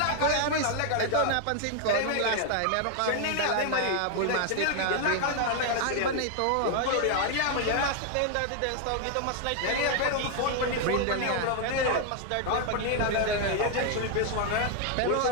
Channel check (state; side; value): different; both; correlation 0.00